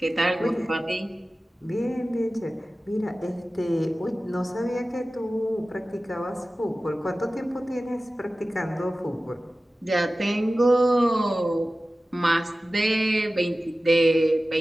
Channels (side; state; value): both; normal; correlation 0.96